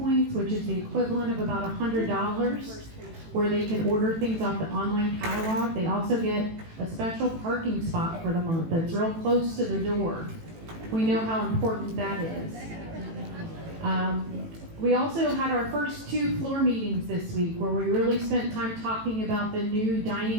which is the equivalent of about $100, where they can order things off the online catalog. They also get a special parking spot for the month that's real close to the door. We know how important that is. We also had our first 2 floor meetings this week, where we really spent time talking about the new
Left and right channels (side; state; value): left; late; 18 ms